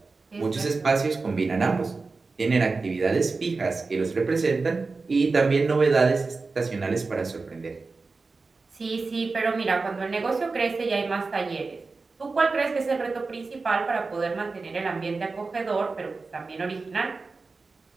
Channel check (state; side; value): quieter; left; 4.0 dB